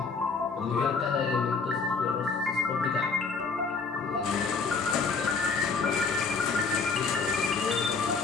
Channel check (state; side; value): quieter; right; 4.7 dB